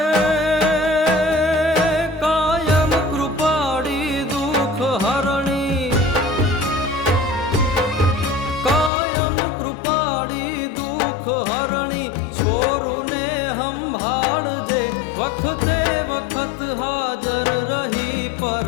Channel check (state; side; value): drops out; right; at 8.9 s